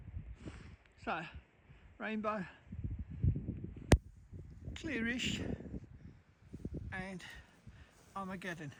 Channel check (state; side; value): identical; both; correlation 1.00